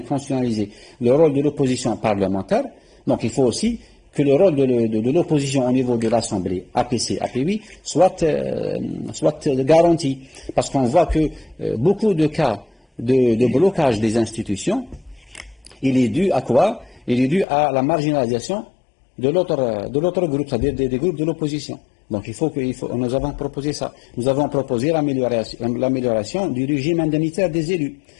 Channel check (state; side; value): drops out; right; at 17.4 s